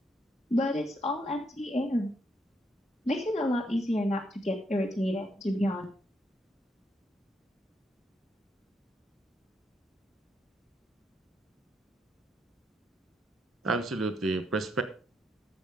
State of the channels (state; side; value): normal; both; correlation 0.77